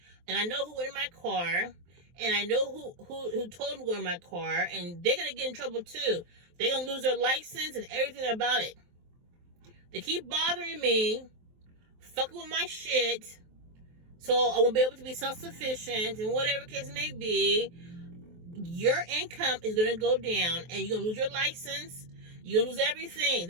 and I know who went in my car, and I know who told me to go in my car, and they're going to get in trouble too. They're going to lose their license and everything about it. They keep bothering me, fucking with my shit, so I won't be able to be self-sufficient, and whatever case may be, your income is going to go down, and you're going to lose your license, you're going to lose everything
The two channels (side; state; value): left; late; 23 ms